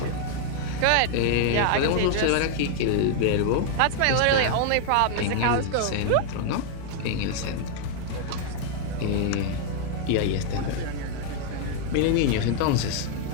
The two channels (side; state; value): both; different; correlation 0.00